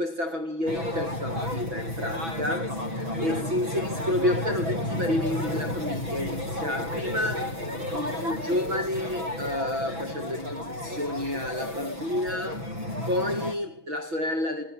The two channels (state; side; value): late; left; 6.1 ms